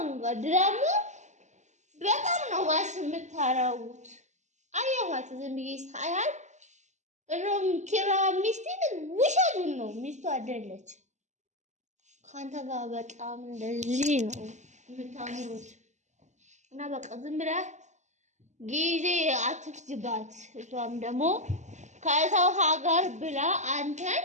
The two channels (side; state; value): left; late; 0.34 ms